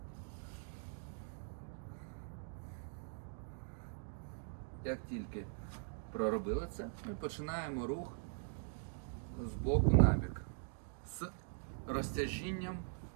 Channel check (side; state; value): left; silent; digital silence